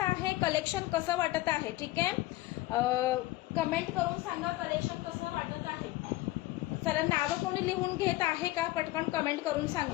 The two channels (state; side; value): quieter; right; 17.8 dB